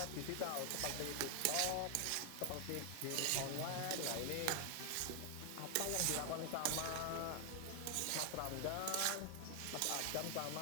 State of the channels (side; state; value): both; different; correlation 0.00